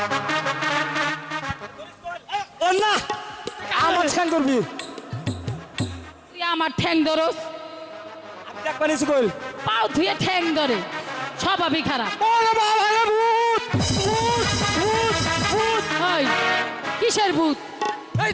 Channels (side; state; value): both; identical; correlation 1.00